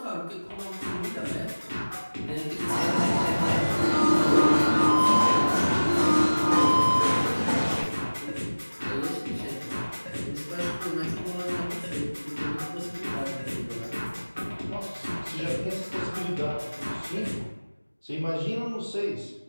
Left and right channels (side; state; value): both; inverted; correlation -1.00